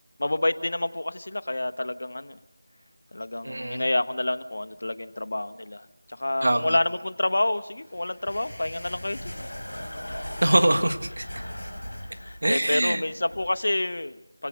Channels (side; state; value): both; inverted; correlation -0.99